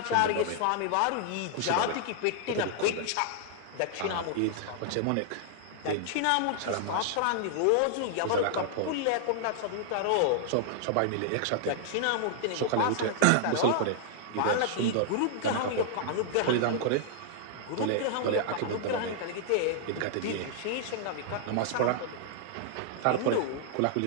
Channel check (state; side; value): different; both; correlation -0.01